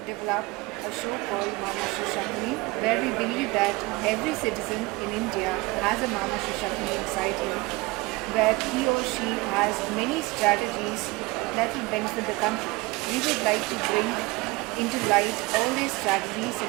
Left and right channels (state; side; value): quieter; left; 23.1 dB